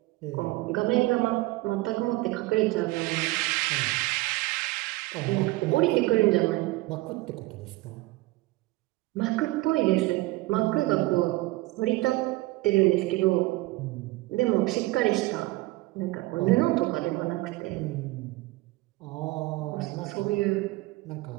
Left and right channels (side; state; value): left; quieter; 20.3 dB